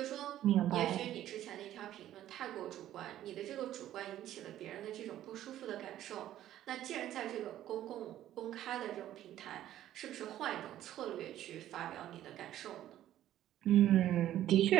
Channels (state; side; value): quieter; left; 12.6 dB